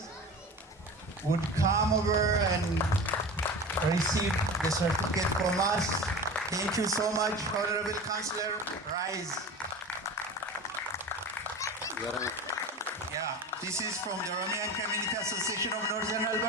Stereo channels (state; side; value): normal; both; correlation 0.33